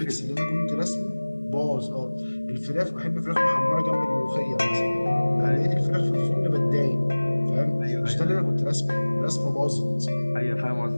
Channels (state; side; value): inverted; both; correlation -1.00